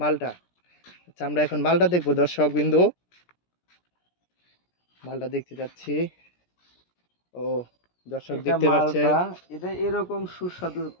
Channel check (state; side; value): late; right; 17 ms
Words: মালটা। আচ্ছা, আমরা এখন মালটা দেখবো দর্শক বিন্দু। মালটা দেখতে যাচ্ছি। ও, দর্শক এটা দেখতে পাচ্ছেন। মালটা, এটা এরকম সুস্বাদু,